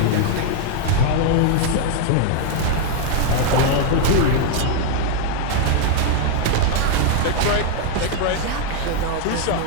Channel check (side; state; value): both; different; correlation 0.00